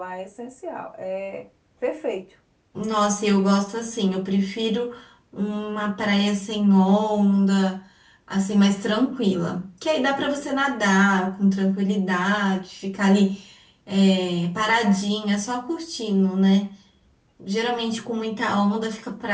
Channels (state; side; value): identical; both; correlation 1.00